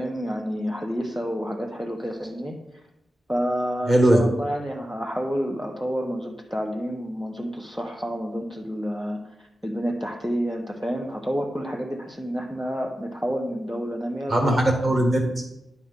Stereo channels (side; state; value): both; normal; correlation 0.92